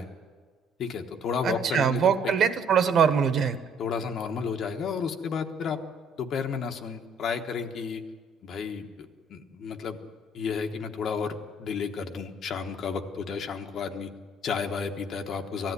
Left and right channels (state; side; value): normal; both; correlation 0.61